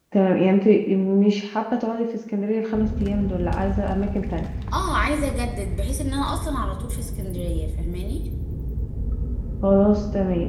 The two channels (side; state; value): both; identical; correlation 1.00